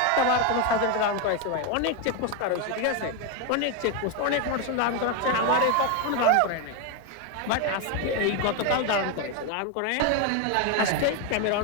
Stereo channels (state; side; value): different; both; correlation 0.02